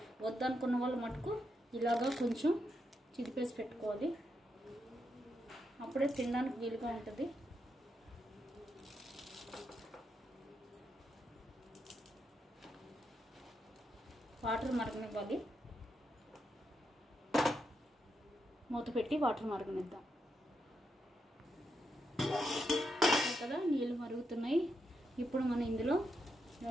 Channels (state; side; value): normal; both; correlation 0.83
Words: వద్దనుకున్న వాళ్ళు మటుకు ఇలాగా కొంచెం చిదిపేసి పెట్టుకోవాలి. అప్పుడే తినడానికి వీలుగా ఉంటుంది. వాటర్ మరగనివ్వాలి. మూత పెట్టి వాటర్ మరగనిద్దాం కదా. నీళ్ళు మరుగుతున్నాయి. ఇప్పుడు మనం ఇందులో